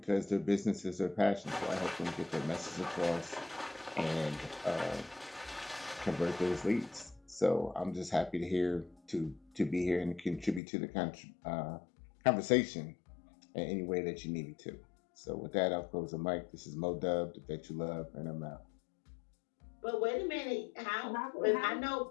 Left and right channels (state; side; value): drops out; right; at 10.6 s